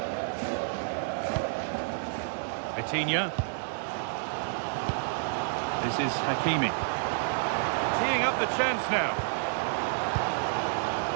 Vitinha. This is Hakimi. Teeing up the chance now.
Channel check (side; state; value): left; silent; digital silence